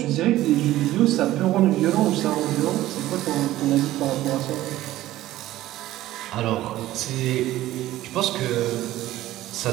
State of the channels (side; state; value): left; quieter; 15.1 dB